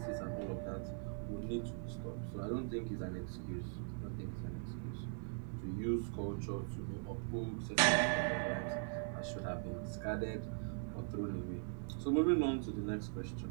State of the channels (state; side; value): silent; left; 51 dB below the other